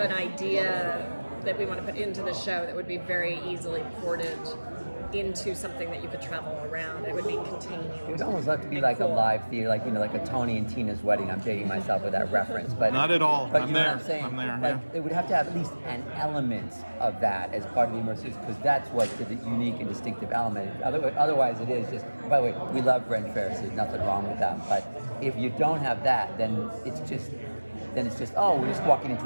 idea that we want to put into the show that would be very easily ported into something that you could travel around. It would be contained. It would almost have to be like a live theater, like like a Tony and Tina's wedding. I'm dating myself with that reference, but not at all. But I'm know there. what I'm saying? I'm there. Like, it would have to have at least an element of that as part of the immersive, because that's what the unique and distinctive element. Otherwise, it is just. By the way, we love Ren fairs. There's nothing wrong with that. But if you don't have that, then it's just we're just walking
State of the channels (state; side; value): inverted; both; correlation -1.00